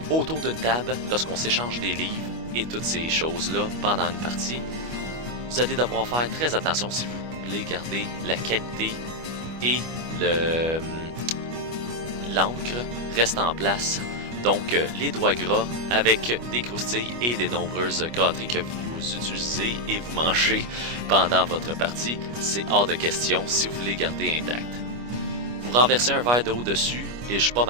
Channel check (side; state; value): left; late; 25 ms